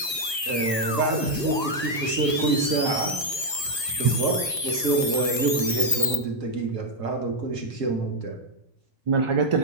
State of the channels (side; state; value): left; late; 1.4 ms